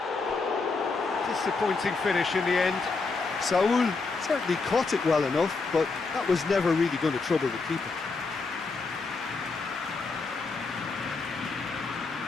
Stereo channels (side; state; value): right; quieter; 4.1 dB